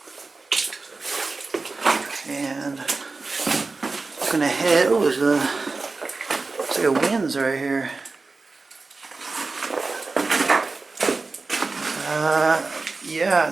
And looking ahead, oh, there's a, looks like a winze right here. Yeah,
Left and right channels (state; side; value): quieter; left; 3.8 dB